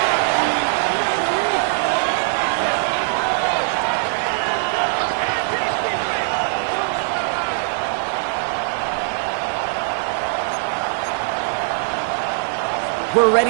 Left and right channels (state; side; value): silent; left; 65 dB below the other